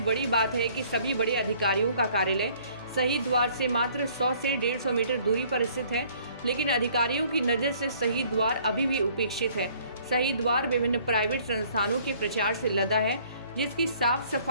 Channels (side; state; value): both; inverted; correlation -0.58